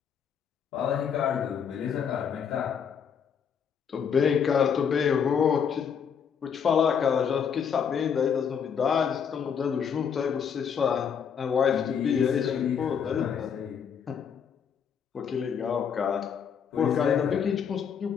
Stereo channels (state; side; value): quieter; right; 7.3 dB